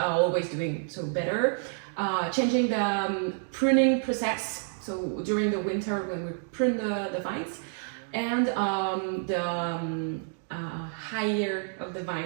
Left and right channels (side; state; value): left; silent; 59 dB below the other